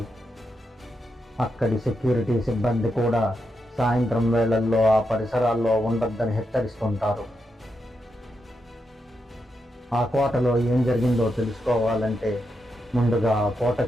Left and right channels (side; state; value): both; normal; correlation 0.84